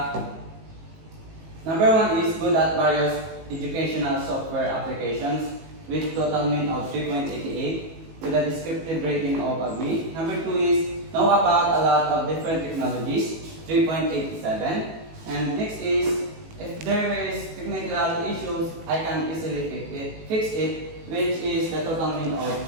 number 1 is good at various educational software applications with total mean of 3.88 with a descriptive rating of a B. Number 2 is know about a lot of different technologies, 3.87. And next is if there is technical issues, I can easily fix it, which is the total mean of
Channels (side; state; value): left; late; 18 ms